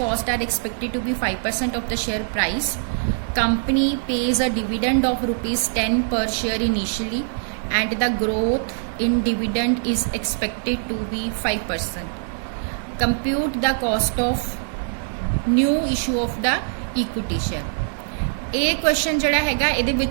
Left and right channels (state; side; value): silent; left; digital silence